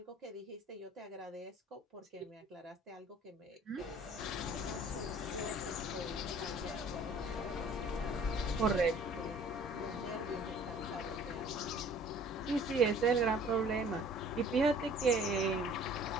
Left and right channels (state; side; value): normal; both; correlation 0.52